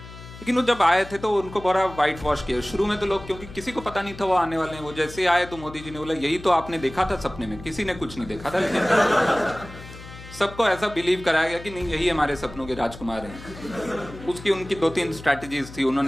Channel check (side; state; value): left; noise; hum, 15 dB below the sound